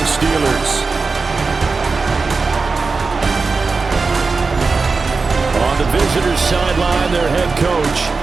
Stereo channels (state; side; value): quieter; left; 4.3 dB